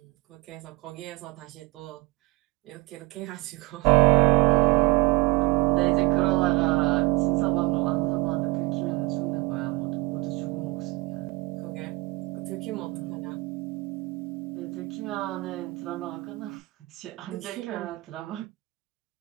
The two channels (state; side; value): quieter; left; 23.4 dB